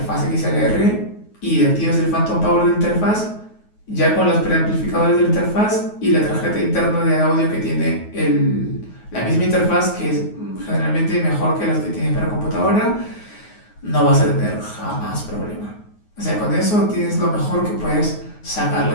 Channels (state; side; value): late; right; 9.4 ms